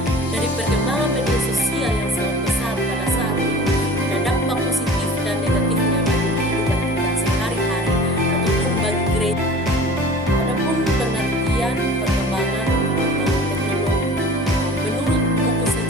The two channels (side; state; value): both; normal; correlation 0.42